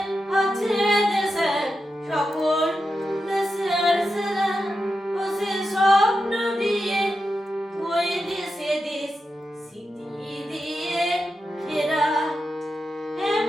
আছে দেশের সকল দেশের সেরা, ও সে স্বপ্ন দিয়ে ওই দেশে দেশ স্মৃতি দিয়ে ঘেরা।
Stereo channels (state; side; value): normal; both; correlation 0.89